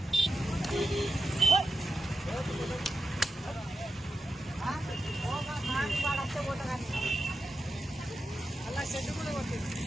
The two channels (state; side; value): normal; both; correlation 0.89